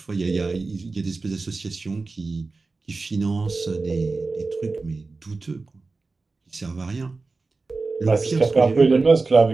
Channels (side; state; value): left; quieter; 3.8 dB